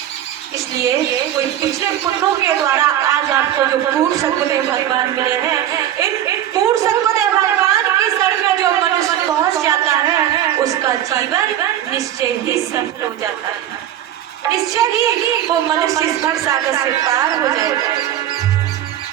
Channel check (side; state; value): left; quieter; 11.6 dB